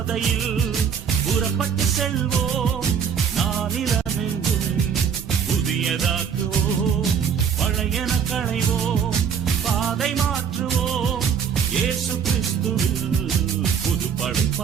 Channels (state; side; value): quieter; left; 7.2 dB